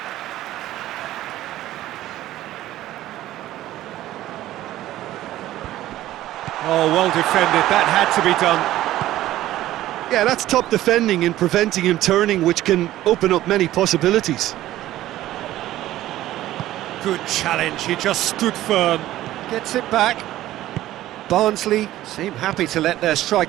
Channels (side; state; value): left; quieter; 14.5 dB